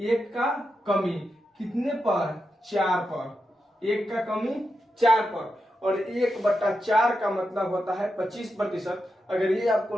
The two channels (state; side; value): normal; both; correlation 0.88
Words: 1 का कमी कितने पर? 4 पर, 1 का कमी 4 पर। और 1/4 का मतलब होता है 25%। अगर ये आपको